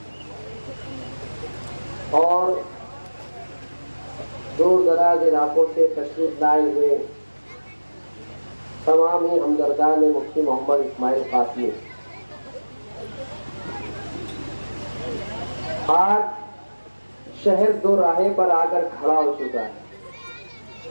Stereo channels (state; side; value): inverted; both; correlation -1.00